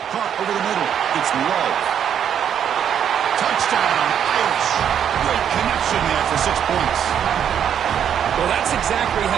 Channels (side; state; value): left; quieter; 8.9 dB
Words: Caught over the middle. It's low. Touchdown, Irish. Great connection there for 6 points. Well, that's exactly how